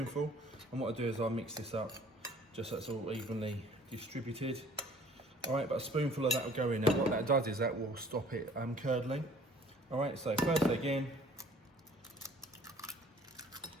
And what I do is I'll mix this up just so it's all evenly distributed. All right, but a spoonful of that will go in. Now what that does is that will stop it curdling. All right, so first egg in.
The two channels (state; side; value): normal; both; correlation 0.53